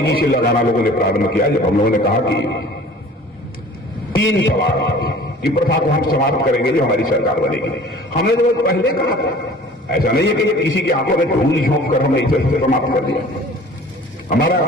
से लगाना लोगों ने प्रारंभ किया जब हम लोगों ने कहा कि 3 तलाक, कि प्रथा को हम समाप्त करेंगे जो हमारी सरकार बनेगी। हमने तो पहले कहा था, ऐसा नहीं है कि किसी की आंखों में धूल झोंक कर हमने इसे समाप्त कर दिया।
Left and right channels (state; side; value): normal; both; correlation 0.46